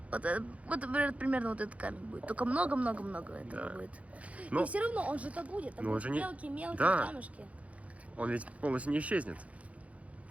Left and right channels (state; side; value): late; left; 0.066 ms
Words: Вот, примерно вот этот камень будет. Только много-много-много этого будет. И все равно он же так будет. Там будут мелкие камешки. Он ведь полностью не исчезнет. С